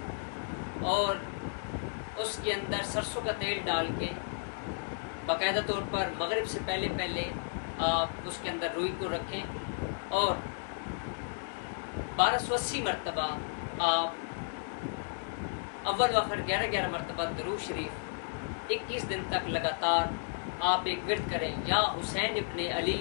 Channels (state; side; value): silent; right; digital silence